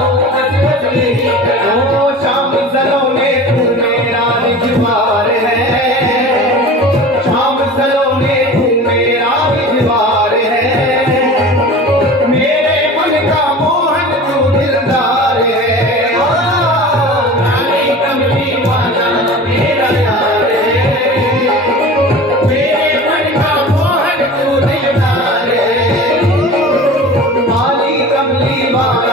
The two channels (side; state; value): both; normal; correlation 0.37